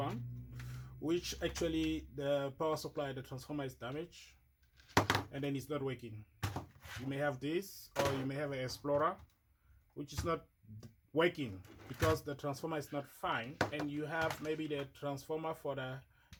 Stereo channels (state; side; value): identical; both; correlation 1.00